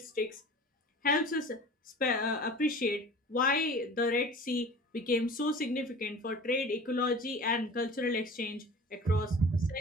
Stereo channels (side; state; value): both; normal; correlation 0.41